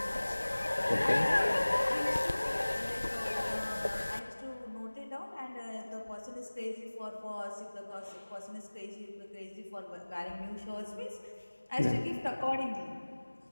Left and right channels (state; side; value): inverted; both; correlation -1.00